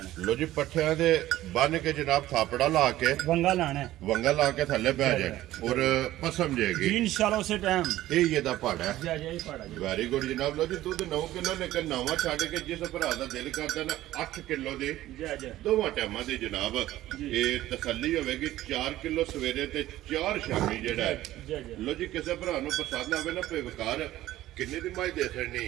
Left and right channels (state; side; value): quieter; left; 14.9 dB